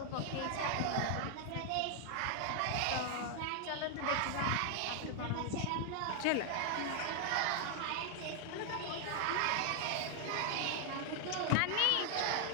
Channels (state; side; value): different; both; correlation 0.00